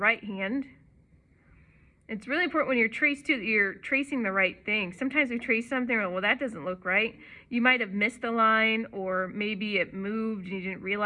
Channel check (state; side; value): identical; both; correlation 1.00